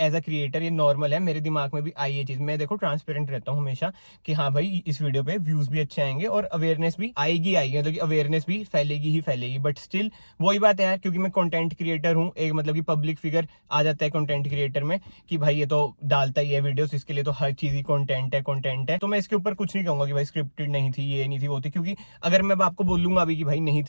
अ क्रिएटर ये नॉर्मल है, मेरे दिमाग में भी आई ये चीज। मैं देखो ट्रांसपेरेंट रहता हूँ हमेशा कि हाँ भाई इस वीडियो पे व्यूज भी अच्छे आएंगे और अवेयरनेस भी आएगी आएगी, मतलब कि अवेयरनेस भी फैलेगी ही फैलेगी। बट स्टिल वही बात है यार, क्योंकि मैं कंटेंट क्रिएटर हूँ, एक मतलब कि पब्लिक फिगर आ जाता है कंटेंट क्रिएटर में कि भाई ये तो डालता ही है वीडियोस, इसके लिए तो हर चीज ही कंटेंट है। तो मैं इसके ऊपर कुछ नहीं कहूंगा कि भाई स्क्रिप्टेड नहीं थी, ये नहीं थी, वो थी, क्योंकि अगर मैं आपको बोलूंगा अभी कि भाई नहीं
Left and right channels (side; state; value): both; inverted; correlation -1.00